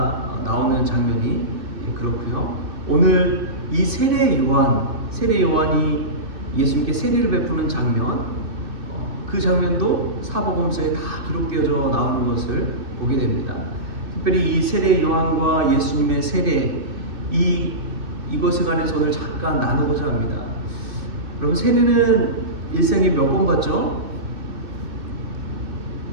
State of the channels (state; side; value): late; left; 2.6 ms